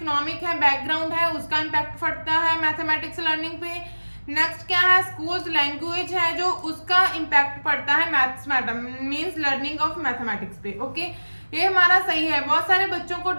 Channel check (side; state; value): both; inverted; correlation -1.00